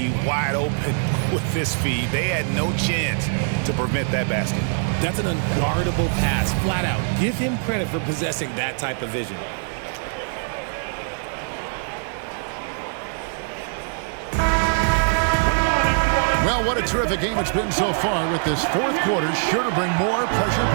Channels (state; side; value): silent; left; 64 dB below the other